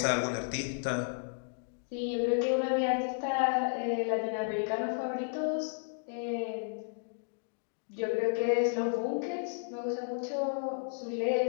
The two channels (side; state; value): right; silent; digital silence